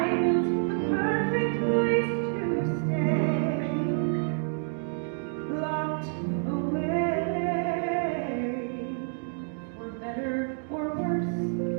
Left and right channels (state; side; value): silent; left; digital silence